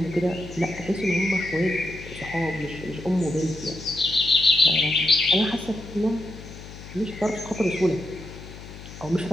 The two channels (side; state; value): left; noise; hum, 15 dB below the sound